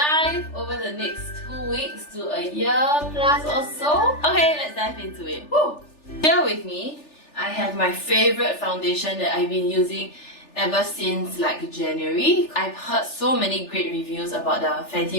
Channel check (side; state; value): right; late; 3.4 ms